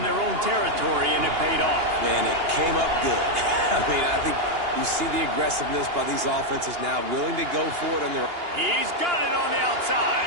their own territory, and it paid off. And it came up good. I mean, I think you see the aggressiveness by these offenses now, willing to go for it on their... He's got it on the outside.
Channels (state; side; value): late; left; 2.8 ms